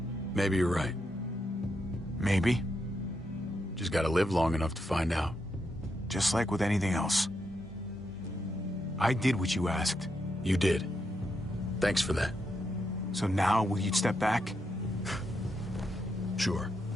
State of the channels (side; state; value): both; normal; correlation 0.82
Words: Maybe you're right. Maybe. Just gotta live long enough to find out. Just like with anything else. I did what you asked. You did. Thanks for that. So now, will you step back? Sure.